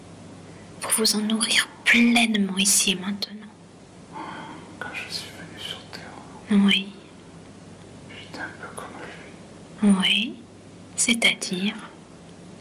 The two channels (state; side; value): identical; both; correlation 1.00